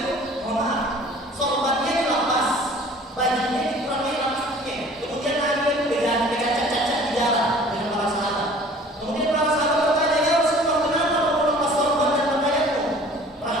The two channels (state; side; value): normal; both; correlation 0.49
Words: mohon maaf, sorbannya dilepas, bajunya dikurangi lapasnya. Kemudian Nabi itu bercacat-cacat di jalan dengan para sahabat. Kemudian para sahabat bertanya, ya Rasulullah, kenapa kamu lepas sorban dan pakaianmu?